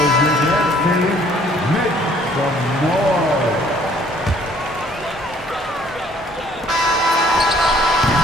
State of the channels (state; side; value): normal; both; correlation 0.59